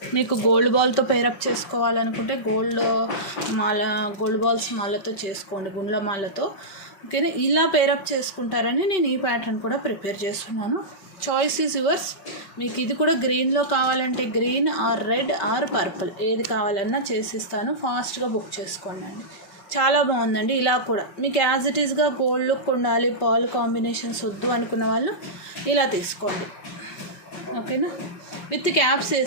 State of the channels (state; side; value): late; right; 5.2 ms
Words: మీకు గోల్డ్ బాల్తో పేరప్ చేసుకోవాలనుకుంటే గోల్డ్ బాల్స్ మాలతో చేసుకోండి, గుండ్ల మాలతో, ఓకేనా. ఇలా పేరప్ చేసుకుంటారని నేను ఈ ప్యాటర్న్ కూడా ప్రిపేర్ చేస్తున్నాను. Choice is yours. మీకు ఇది కూడా గ్రీన్లో కావాలంటే green are red or purple ఏది కావాలన్నా చేసిస్తాను. ఫాస్ట్గా బుక్ చేసుకోండి అండి. చాలా బాగుందండి. ఇలా కూడా మీకు యాజ్ ఇట్ ఈస్గా గోల్డ్ లుక్ ఉండాలి, పర్ల్ కాంబినేషన్స్ వద్దు అనుకున్న వాళ్ళు ఇలా తీసుకోండి, ఓకేనా. విత్ క్యాప్స్